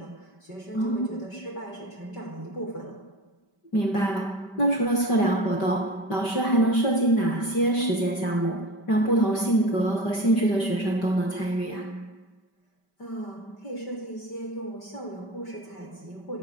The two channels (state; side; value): late; right; 5.2 ms